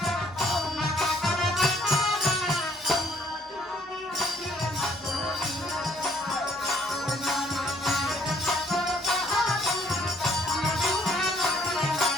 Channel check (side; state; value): both; normal; correlation 0.64